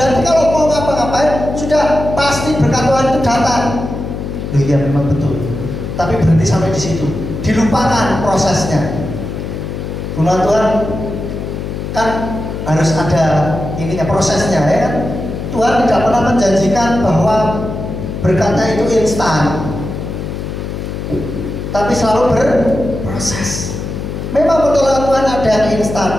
kalau mau ngapa-ngapain sudah pasti berkat Tuhan itu datang. Loh iya memang betul, tapi berhenti sampai di situ, dilupakan prosesnya. Firman Tuhan kan harus ada ininya, prosesnya, ya kan? Tuhan tidak pernah menjanjikan bahwa berkatnya itu instan, tapi selalu berproses. Memang pertolongan Tuhan ada yang instan,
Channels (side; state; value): left; noise; hum, 6 dB below the sound